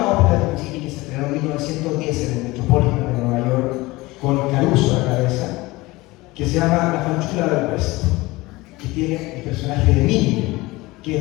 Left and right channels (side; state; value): right; quieter; 21.0 dB